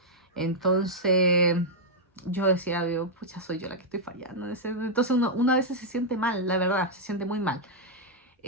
Entonces yo decía, pucha, soy yo la que estoy fallando. Entonces uno a veces se siente mal, la verdad, se siente muy mal.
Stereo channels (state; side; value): normal; both; correlation -0.05